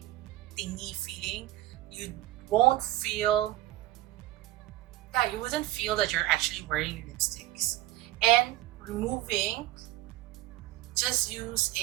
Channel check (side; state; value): left; quieter; 16.0 dB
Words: thingy feeling, you won't feel, you wouldn't feel that you're actually wearing lipsticks. And removing, just use